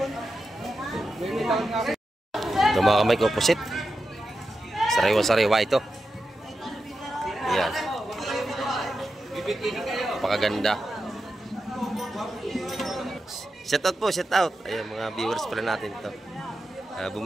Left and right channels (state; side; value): normal; both; correlation 0.90